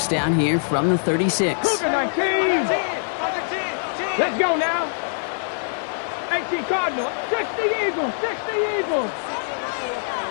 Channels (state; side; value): silent; right; digital silence